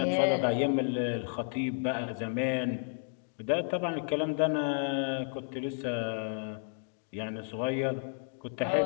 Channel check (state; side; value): silent; right; digital silence